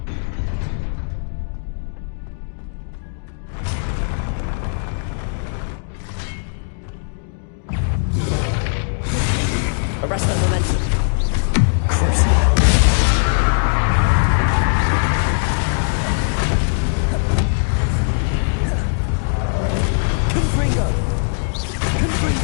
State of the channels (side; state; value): right; silent; digital silence